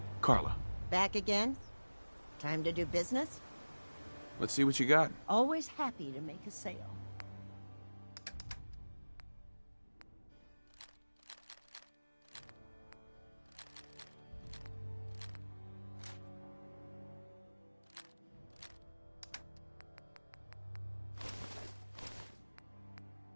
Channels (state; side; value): inverted; both; correlation -1.00